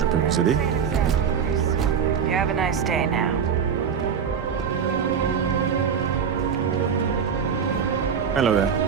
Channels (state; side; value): quieter; left; 7.1 dB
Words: peux vous aider? You have a nice day now. Hello there.